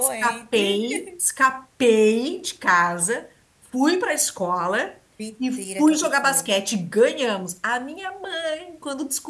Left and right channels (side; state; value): both; identical; correlation 1.00